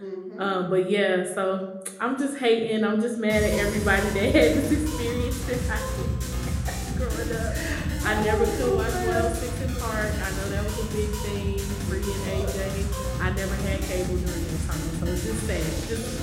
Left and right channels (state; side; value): identical; both; correlation 1.00